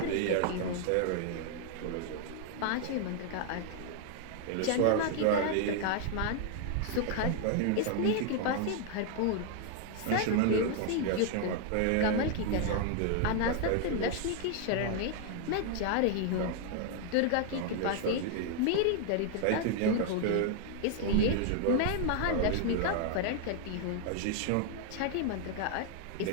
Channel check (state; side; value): different; both; correlation 0.00